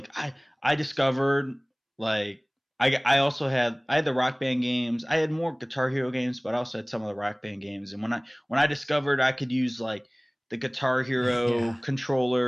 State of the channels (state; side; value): identical; both; correlation 1.00